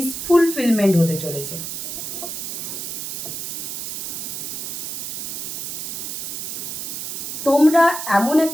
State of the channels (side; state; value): right; noise; hiss, 5 dB below the sound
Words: ফুলফিলমেন্ট হতে চলেছে। তোমরা এমন